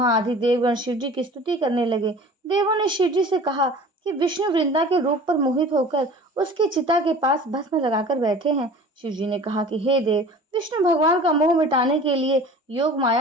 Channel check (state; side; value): normal; both; correlation 0.43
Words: आदि देवगण शिवजी की स्तुति करने लगे। देवों ने शिवजी से कहा कि विष्णु वृंदा के रूप पर मोहित होकर उसकी चिता के पास भस्म लगाकर बैठे हैं। शिवजी ने कहा कि हे देव, विष्णु भगवान का मोह मिटाने के लिए योग